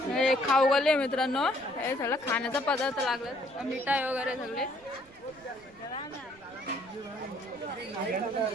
हे खाऊ गले मित्रांनो. हे सगळं खाण्याचा पदार्थ लागला, मिठाई वगैरे सगळे.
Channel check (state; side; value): noise; right; rumble, 28 dB below the sound